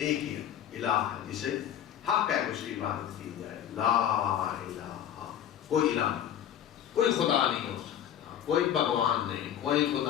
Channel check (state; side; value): quieter; right; 10.2 dB